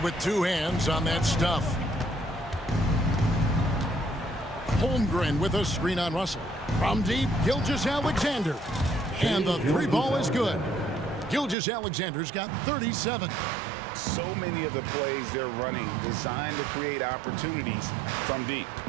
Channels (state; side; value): drops out; left; at 11.6 s